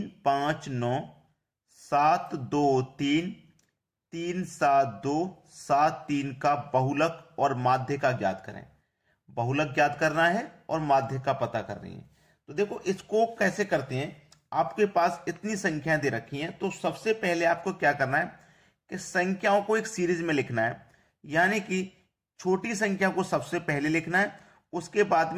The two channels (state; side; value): identical; both; correlation 1.00